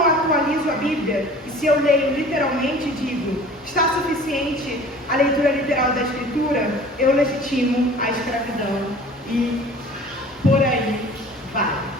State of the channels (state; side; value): normal; both; correlation 0.45